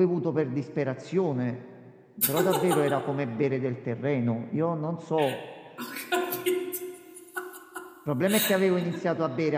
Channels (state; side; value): identical; both; correlation 1.00